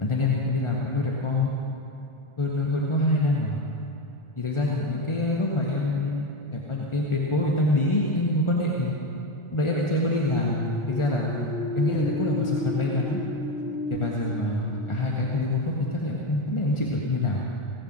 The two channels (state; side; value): late; right; 1.4 ms